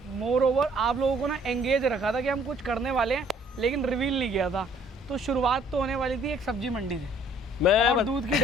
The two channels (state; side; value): normal; both; correlation 0.60